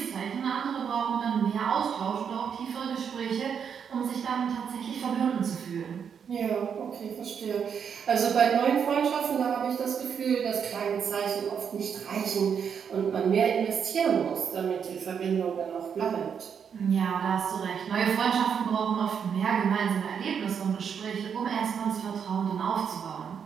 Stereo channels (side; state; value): left; quieter; 7.3 dB